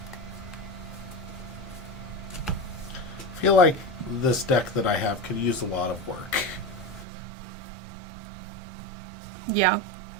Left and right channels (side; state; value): left; drops out; at 7.1 s